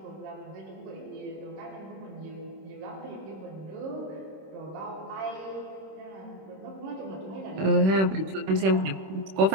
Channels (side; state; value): left; late; 26 ms